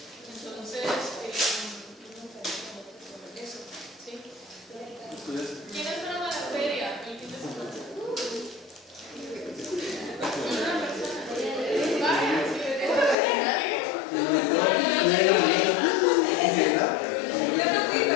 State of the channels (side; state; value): right; drops out; at 13.2 s